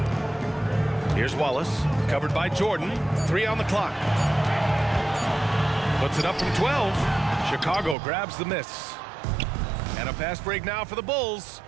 Here's Wallace, covered by Jordan. 3 on the clock. Puts it up from 12. Chicago grabs the miss. And a fast break now for the Bulls.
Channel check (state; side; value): drops out; left; at 8.0 s